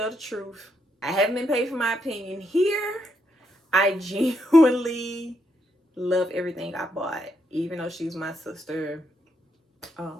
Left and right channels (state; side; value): normal; both; correlation 0.78